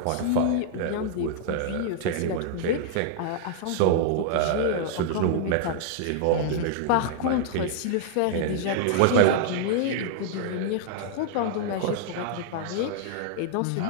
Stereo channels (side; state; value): both; different; correlation -0.01